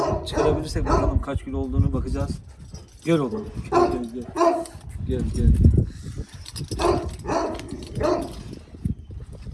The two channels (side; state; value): both; identical; correlation 1.00